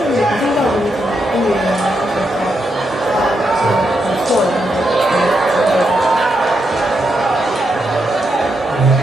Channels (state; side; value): normal; both; correlation 0.82